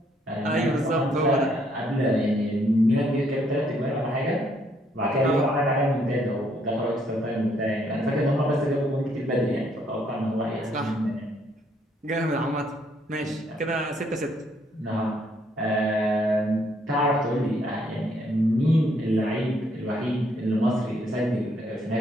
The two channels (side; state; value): both; normal; correlation 0.69